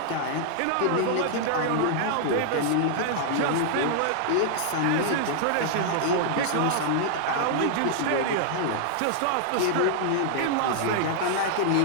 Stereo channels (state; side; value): different; both; correlation -0.01